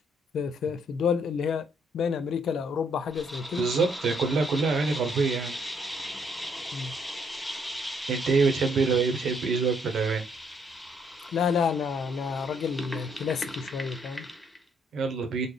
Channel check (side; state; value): both; normal; correlation 0.69